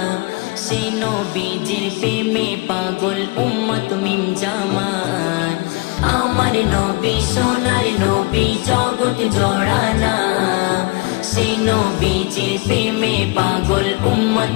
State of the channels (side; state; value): right; quieter; 25.9 dB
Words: সেই নবীজির প্রেমে পাগল উম্মত মিম জামান আমার নবী সোনার নবী জগৎ জোড়ানা সেই নবীজির প্রেমে পাগল উম্মত